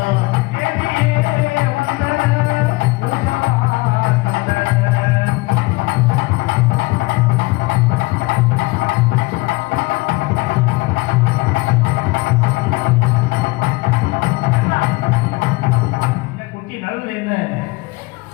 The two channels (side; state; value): right; quieter; 23.5 dB